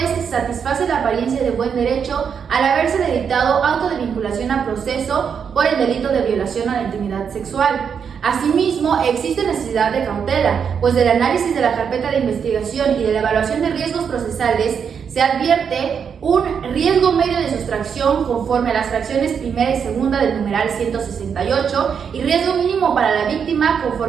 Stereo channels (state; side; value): quieter; left; 7.0 dB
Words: que se satisface la apariencia de buen derecho al haberse dictado auto de vinculación a proceso por el delito de violación a la intimidad sexual. Asimismo, existe necesidad de cautela, pues del análisis de la carpeta de investigación y de la evaluación de riesgos procesales se advierte un riesgo medio de sustracción conforme a las fracciones primera y segunda del numeral 168 y riesgo mínimo para la víctima